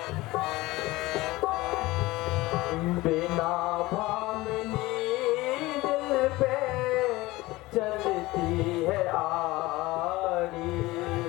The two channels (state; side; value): quieter; right; 19.7 dB